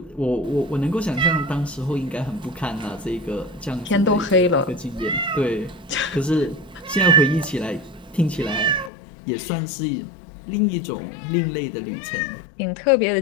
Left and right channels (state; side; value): drops out; right; at 8.9 s